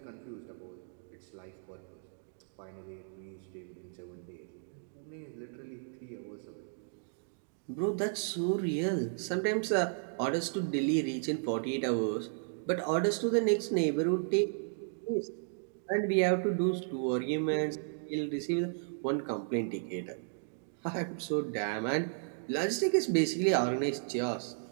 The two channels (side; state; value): left; silent; digital silence